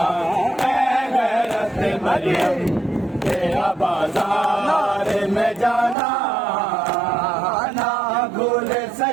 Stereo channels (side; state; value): left; drops out; at 6.0 s